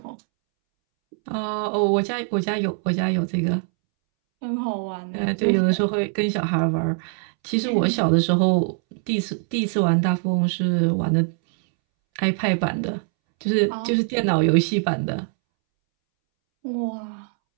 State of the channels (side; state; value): left; silent; 64 dB below the other